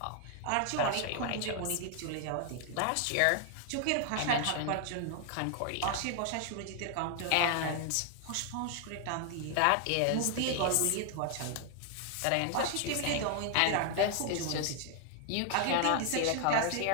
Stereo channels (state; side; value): different; both; correlation 0.00